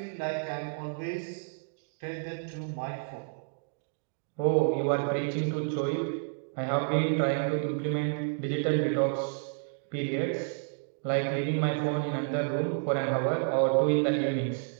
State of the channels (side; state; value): left; silent; digital silence